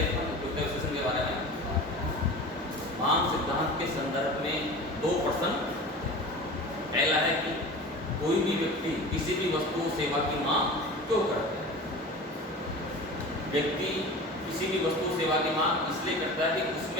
अपन उपयोगिता विश्लेषण के बारे में मांग सिद्धांत के संदर्भ में दो प्रश्न। पहला है कि कोई भी व्यक्ति किसी भी वस्तु सेवा की मांग क्यों करता है। व्यक्ति किसी भी वस्तु सेवा की मांग इसलिए करता है कि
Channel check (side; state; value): both; normal; correlation 0.35